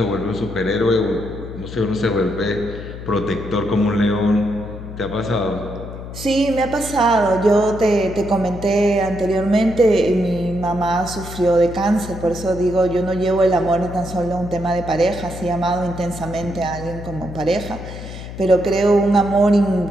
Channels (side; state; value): left; noise; hum, 11 dB below the sound